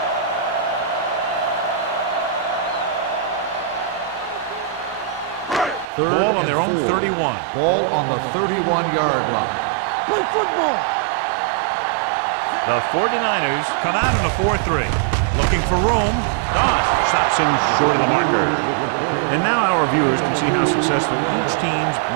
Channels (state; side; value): drops out; left; at 5.9 s